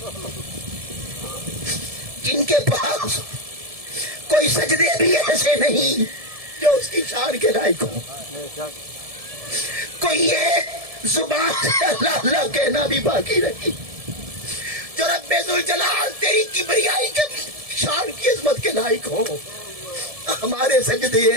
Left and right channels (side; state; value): left; late; 1.7 ms